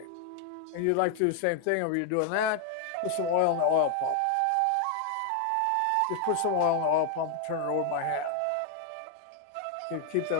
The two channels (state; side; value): different; both; correlation 0.01